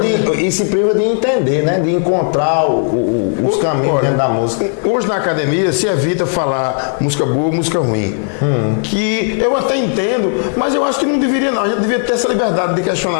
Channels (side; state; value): right; silent; 63 dB below the other